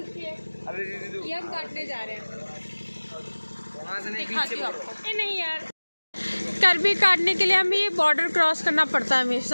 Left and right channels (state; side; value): inverted; both; correlation -1.00